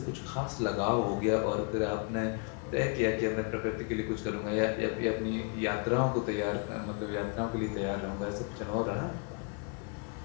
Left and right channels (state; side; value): quieter; right; 33.6 dB